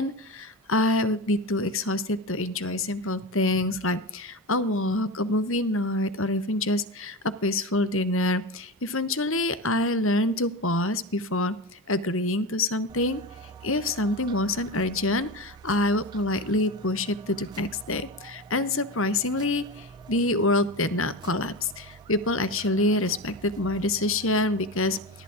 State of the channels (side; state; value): both; normal; correlation 0.23